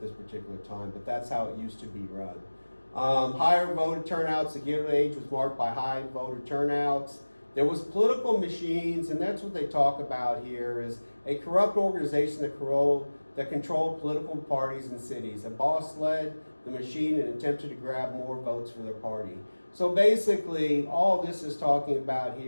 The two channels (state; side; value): inverted; both; correlation -1.00